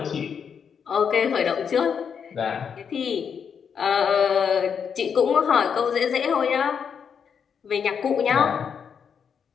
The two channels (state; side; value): quieter; right; 7.0 dB